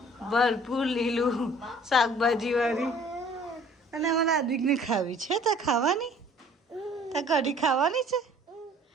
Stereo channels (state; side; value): normal; both; correlation 0.53